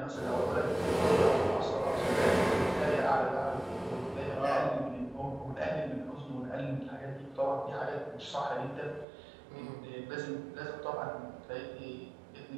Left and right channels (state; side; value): drops out; left; at 9.1 s